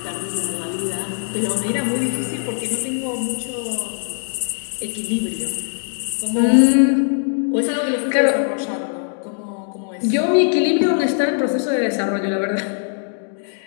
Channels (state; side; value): silent; right; digital silence